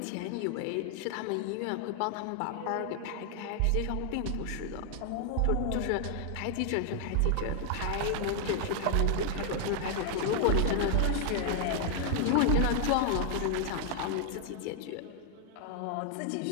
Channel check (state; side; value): different; both; correlation 0.00